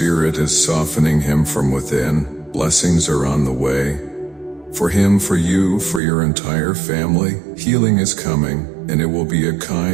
is softening him from within. Blessings are on the way. For him, for you, for your entire family, healing is coming, and it will be a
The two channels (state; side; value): drops out; left; at 6.0 s